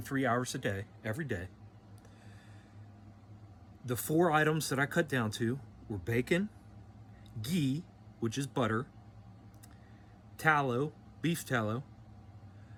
hours a day, every day. The 4 items that I cut down to were bacon, ghee, which is butter, tallow, beef tallow,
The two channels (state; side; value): identical; both; correlation 1.00